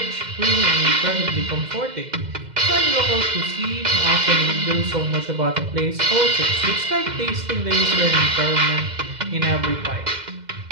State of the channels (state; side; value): late; left; 2.1 ms